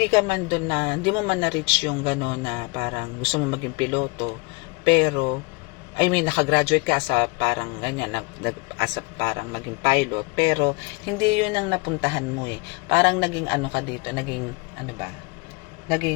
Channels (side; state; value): right; quieter; 28.1 dB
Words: ka man doon na hindi mo man na-reach yung gano'n na parang gusto mo maging piloto, pero I mean nakagraduate ka sa parang ganyan, as a parang maging pilot, pero hindi yun ang napuntahan mo eh. Parang naging ano ka dito, naging ano ba?